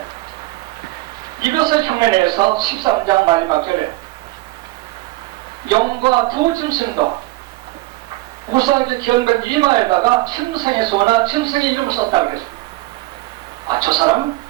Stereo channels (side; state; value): left; quieter; 20.3 dB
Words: 이것을 흉내내서 13장 마지막 절에 영과 두 짐승도 우사하게 기억된 이마에다가 짐승의 수나 짐승의 이름을 썼다고 그랬습니다. 아, 저 사람은